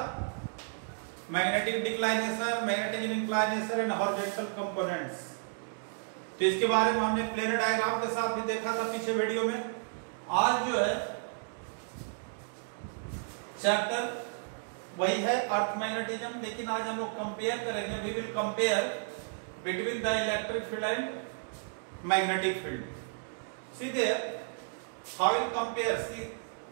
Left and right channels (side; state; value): left; silent; digital silence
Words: Magnetic declination, magnetic inclination and horizontal components. तो इसके बारे में हमने प्लेनर डायग्राम के साथ भी देखा था पिछले वीडियो में। आज जो है चैप्टर वही है अर्थ मैग्नेटिज्म, लेकिन आज हम लोग कंपेयर करेंगे। We will compare between the electric field and magnetic field. See there how will compare. See